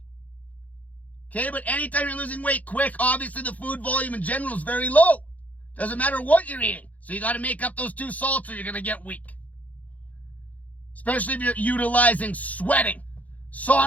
Okay, but anytime you're losing weight quick, obviously the food volume in general is very low. Doesn't matter what you're eating. So you got to make up those 2 salts or you're going to get weak. Especially if you're utilizing sweating,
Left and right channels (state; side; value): late; right; 0.075 ms